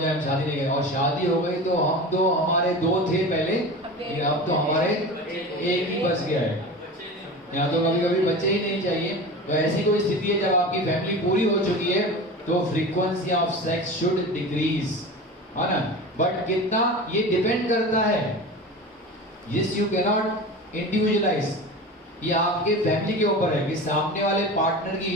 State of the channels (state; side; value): normal; both; correlation 0.31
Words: हम शादी नहीं करें। और शादी हो गई तो हम तो, हमारे 2 थे पहले, लेकिन अब तो हमारे एक ही बच गया है। यहाँ तो कभी कभी बच्चे ही नहीं चाहिए। तो ऐसी कोई स्थिति है जब आपकी फैमिली पूरी हो चुकी है तो frequency of sex should decrease, है ना। बट कितना, ये डिपेंड करता है, yes you can not individualise, ये आपके फैमिली के ऊपर है कि सामने वाले पार्टनर की